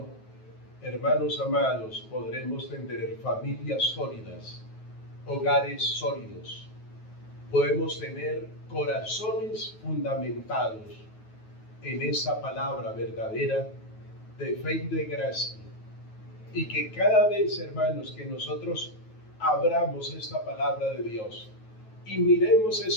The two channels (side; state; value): right; late; 9.3 ms